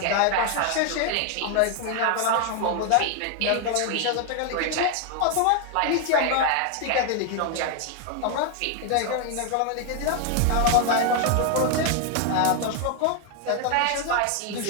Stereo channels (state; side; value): different; both; correlation 0.01